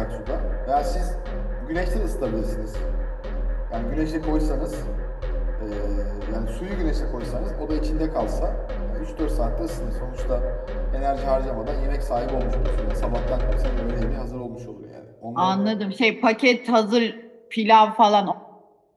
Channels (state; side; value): identical; both; correlation 1.00